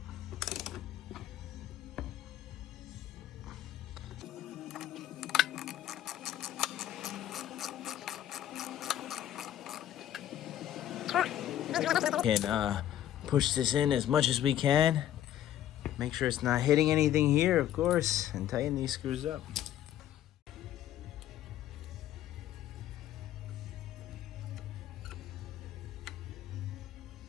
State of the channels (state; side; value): quieter; right; 11.9 dB